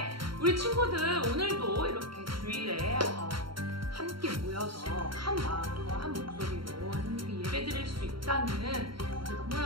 우리 친구들 오늘도 이렇게 주일에 함께 모여서 한 마음과 한 목소리로 하나님께 예배 드릴 수 있다는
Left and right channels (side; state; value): left; late; 0.73 ms